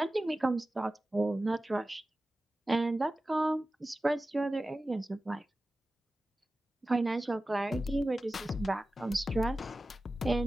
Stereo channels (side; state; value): both; normal; correlation 0.95